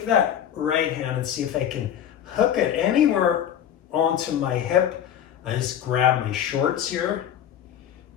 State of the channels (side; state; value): right; quieter; 9.9 dB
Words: that right hand and see if I can hook it anywhere onto my hip. I just grab my shorts here.